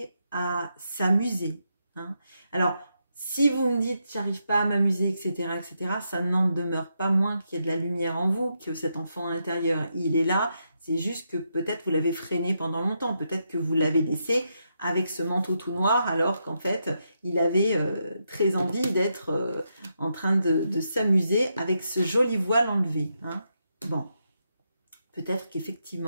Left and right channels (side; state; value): both; inverted; correlation -0.82